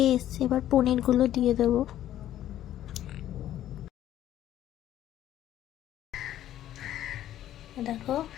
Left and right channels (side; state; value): right; quieter; 12.3 dB